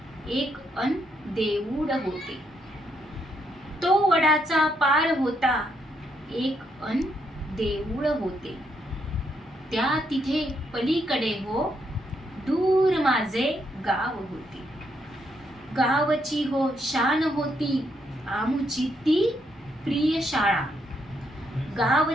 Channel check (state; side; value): normal; both; correlation 0.76